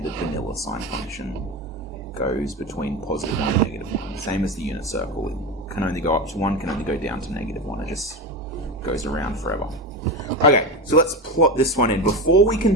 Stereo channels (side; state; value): both; normal; correlation 0.21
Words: vanilla sine function goes between +1 and -1. Same as the unit circle. It can only go up to 1, can only go down to -1. It just goes around forever. Okay, so let's plot this one in. Before we can